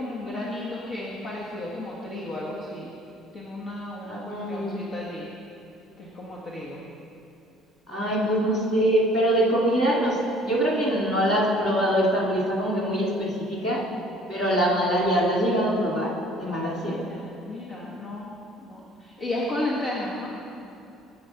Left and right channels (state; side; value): normal; both; correlation 0.55